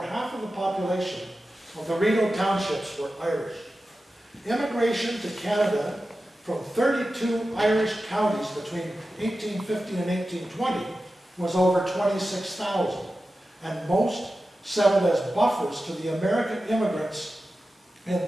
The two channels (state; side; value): normal; both; correlation 0.93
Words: half of the population of the Rideau townships were Irish. Immigration to Canada from 32 Irish counties between 1850 and 1820 was over 26,000, and most settled as buffers to the American immigrants